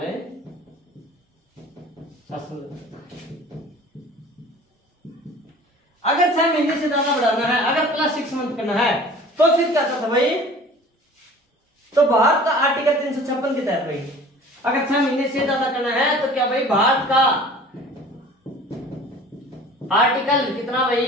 शासन लगता था। अगर 6 महीने से ज्यादा बढ़ाना है, अगर प्लस 6 मंथ करना है, तो फिर क्या था भाई, तो भारत का आर्टिकल 356 के तहत भाई, अगर 6 महीने से ज्यादा करना है तो क्या भाई, भारत का आर्टिकल कितना भाई,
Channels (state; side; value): normal; both; correlation 0.45